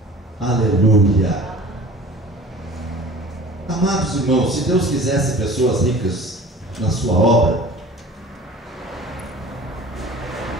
Aleluia. Amados irmãos, se Deus quisesse pessoas ricas na sua obra,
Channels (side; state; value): both; normal; correlation 0.43